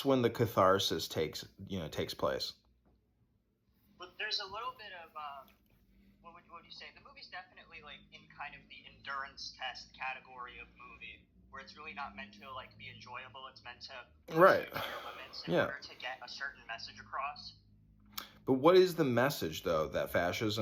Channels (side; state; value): both; identical; correlation 1.00